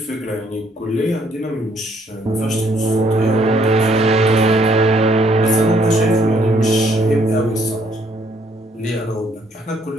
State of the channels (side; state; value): both; normal; correlation 0.67